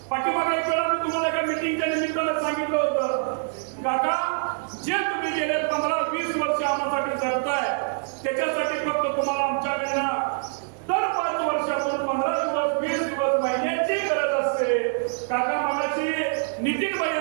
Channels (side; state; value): left; silent; digital silence